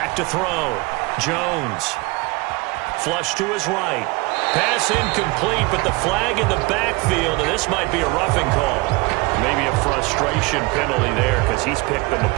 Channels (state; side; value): quieter; left; 25.3 dB